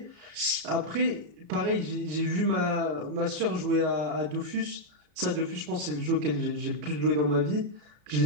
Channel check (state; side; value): late; left; 33 ms